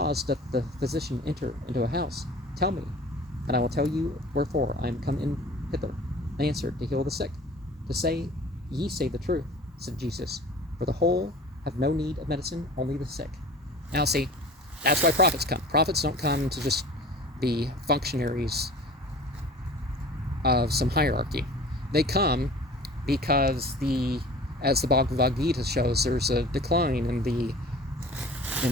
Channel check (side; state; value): both; normal; correlation 0.43